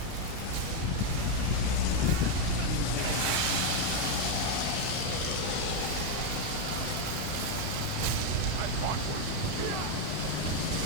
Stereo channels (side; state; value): both; different; correlation 0.02